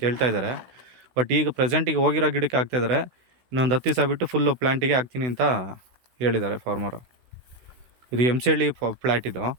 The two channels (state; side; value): late; left; 16 ms